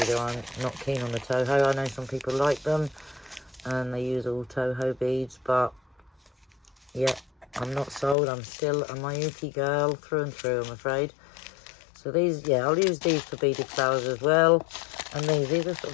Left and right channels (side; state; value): right; drops out; at 8.2 s